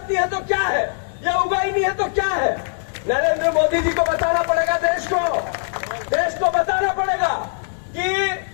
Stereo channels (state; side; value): silent; right; digital silence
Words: नहीं है तो क्या है? ये उगाई नहीं है तो क्या है? नरेंद्र मोदी जी को बताना पड़ेगा देश को बताना पड़ेगा कि